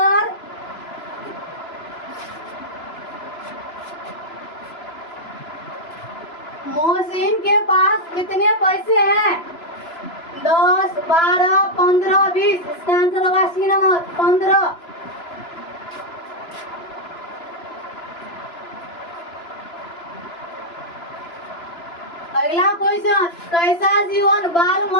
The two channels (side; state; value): right; late; 3.0 ms